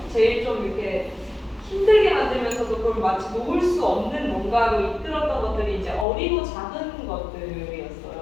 제일 좀 이렇게 힘들게 만들면서도 그걸 마치 놓을 수 없는 뭔가로 이끌었던 것들이 이제 어리고 작은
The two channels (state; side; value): drops out; right; at 6.1 s